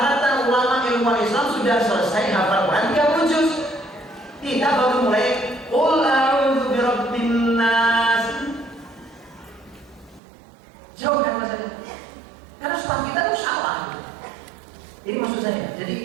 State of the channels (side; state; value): left; drops out; at 10.2 s